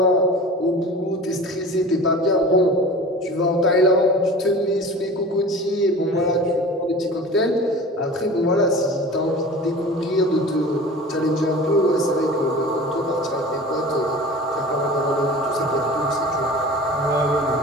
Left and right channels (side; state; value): both; normal; correlation 0.38